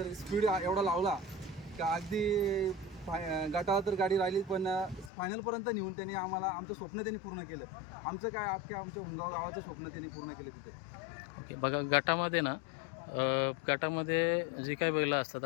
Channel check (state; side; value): drops out; right; at 5.1 s